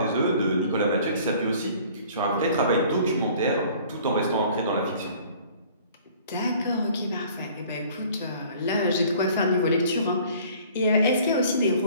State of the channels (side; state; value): both; inverted; correlation -0.52